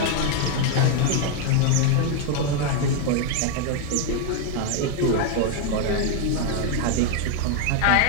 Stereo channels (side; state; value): both; different; correlation 0.00